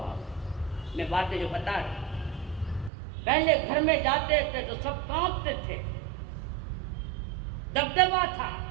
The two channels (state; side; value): drops out; left; at 2.9 s